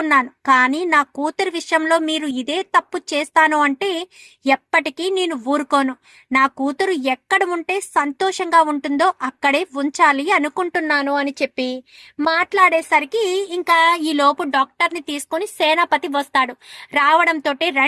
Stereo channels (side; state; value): both; identical; correlation 1.00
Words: కానీ నా కూతురు విషయంలో మీరు ఇదే తప్పు చేస్తాను అంటే ఎప్పటికీ నేను ఊరుకోను. నా కూతురు ఎక్కడ ఉంటే సంతోషంగా ఉంటుందో అక్కడే ఉంచాలి అనుకుంటున్నాను అని చెప్పి మాట్లాడేసరికి ఇంకా ఈ లోపు డాక్టర్ని తీసుకొని సేనాపతి వస్తాడు. రావడంతో